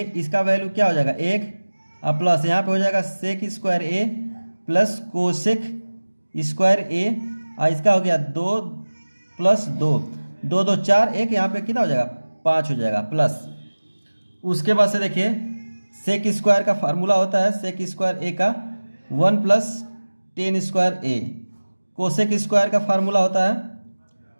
इसका वैल्यू क्या हो जाएगा 1 और प्लस यहाँ पे हो जाएगा सेक square A plus cosec square ए, और इसका हो गया 2 प्लस 2 2 2 4 1, यहाँ पे कितना हो जाएगा 5 हो जाएगा प्लस। उसके बाद से देखिए सेक स्क्वायर का फार्मूला होता है सेक स्क्वायर ए का 1 प्लस टेन स्क्वायर ए, कोसेक स्क्वायर का फार्मूला होता है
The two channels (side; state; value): both; inverted; correlation -1.00